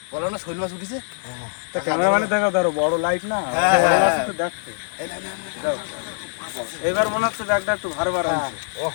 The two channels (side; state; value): right; silent; digital silence